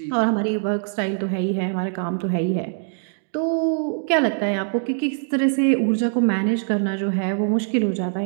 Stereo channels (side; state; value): left; silent; digital silence